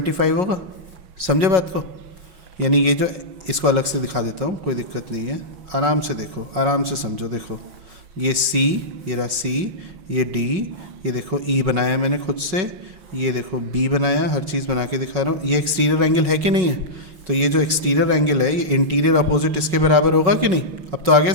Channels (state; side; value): late; left; 5.4 ms